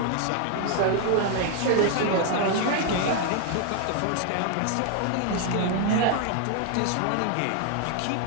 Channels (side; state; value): both; different; correlation 0.00